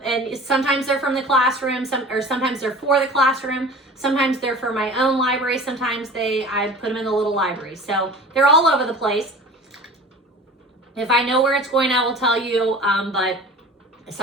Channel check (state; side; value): normal; both; correlation 0.41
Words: sometimes they're from the classroom, sometimes they're for the classroom. Sometimes they're for my own library. Sometimes I put them in the little library. So they're all over the place. If I know where it's going, I will tell you, but